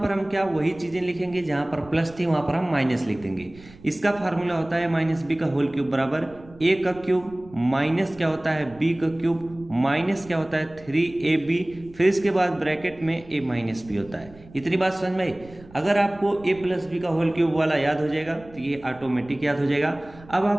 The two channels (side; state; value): right; noise; rumble, 22 dB below the sound